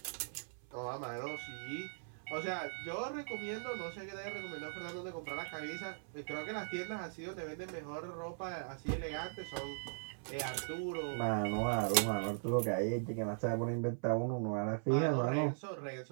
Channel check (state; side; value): silent; left; 51 dB below the other